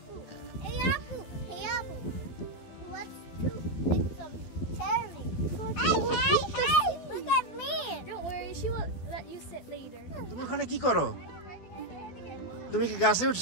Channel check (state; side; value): late; right; 12 ms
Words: hey Apple, hey Apple. Let's pick some cherry. Hey, look at me. Don't worry, she will let you sit later. তুমি ওখানে কি করো? তুমি কি গাছে